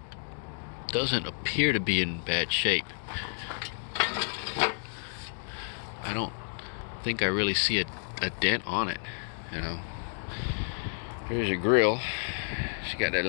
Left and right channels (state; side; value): silent; right; digital silence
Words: doesn't appear to be in bad shape. I don't think I really see a dent on it, you know. Here's your grill. She got that